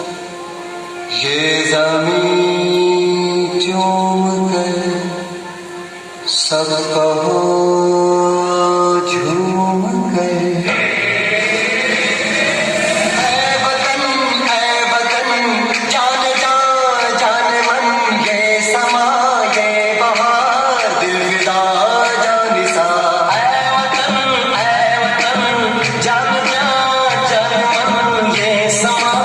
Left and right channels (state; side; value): identical; both; correlation 1.00